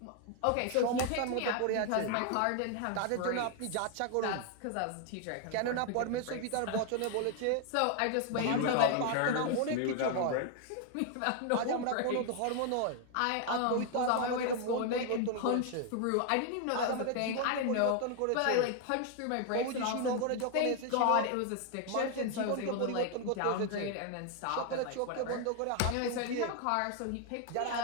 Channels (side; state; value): both; different; correlation 0.00